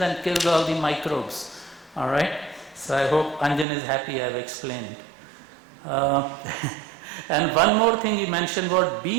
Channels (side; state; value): left; drops out; at 3.7 s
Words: and kills all the microbes. All right? So I hope Anjan is happy I've explained. And one more thing he mentioned was